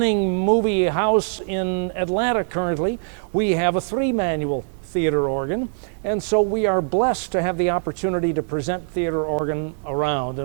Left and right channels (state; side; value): silent; left; digital silence